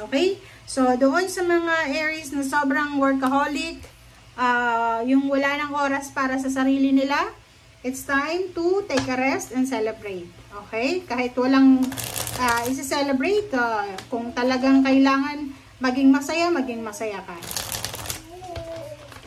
Okay? So, doon sa mga Aries na sobrang workaholic, yung wala ng oras para sa sarili nila, it's time to take a rest and celebrate. Okay? Kahit walang isi-celebrate, kung talagang kailangan maging masaya ka.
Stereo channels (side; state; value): both; identical; correlation 1.00